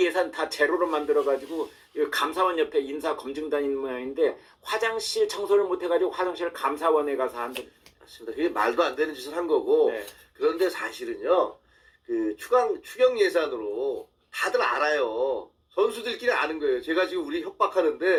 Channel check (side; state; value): both; identical; correlation 1.00